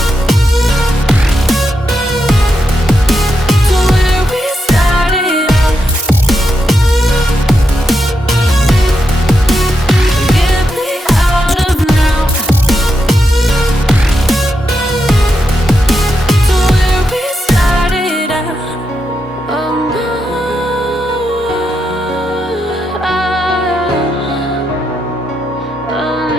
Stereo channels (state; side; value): normal; both; correlation 0.84